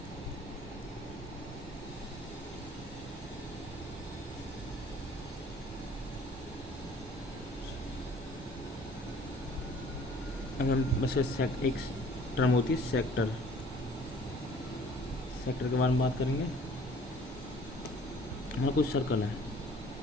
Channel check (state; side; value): normal; both; correlation 0.52